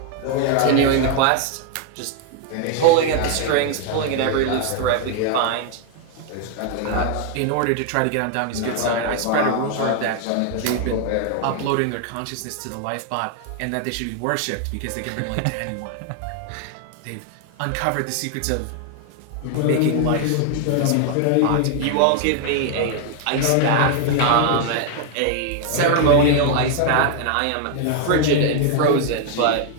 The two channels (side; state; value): both; different; correlation 0.00